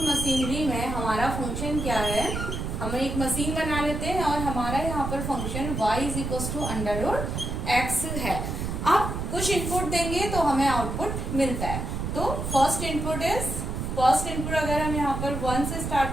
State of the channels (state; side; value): noise; right; rumble, 4 dB below the sound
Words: मशीनरी में हमारा फंक्शन क्या है. हम एक मशीन बना लेते हैं और हमारा यहाँ पर function y is equal to under root x है. अब कुछ इनपुट देंगे तो हमें आउटपुट मिलता है. तो फर्स्ट इनपुट अगर हम यहाँ पर 1 से